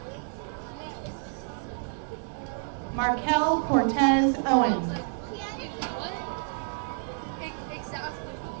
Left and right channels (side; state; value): left; silent; 58 dB below the other